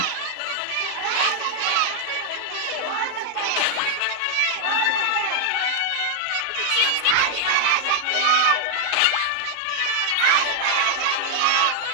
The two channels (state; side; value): different; both; correlation 0.00